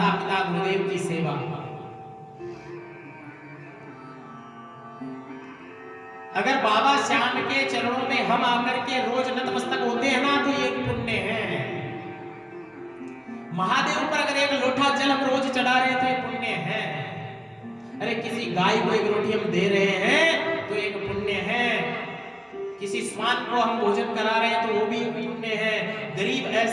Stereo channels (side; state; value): both; identical; correlation 1.00